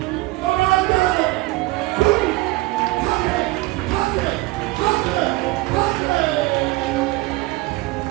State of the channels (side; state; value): left; quieter; 20.9 dB